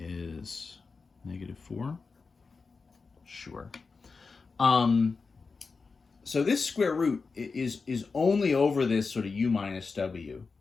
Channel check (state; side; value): quieter; right; 4.5 dB